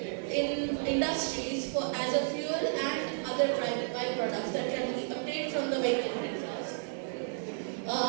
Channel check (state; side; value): silent; left; digital silence